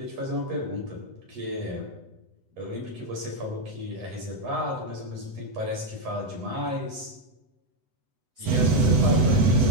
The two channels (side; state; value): left; late; 8.0 ms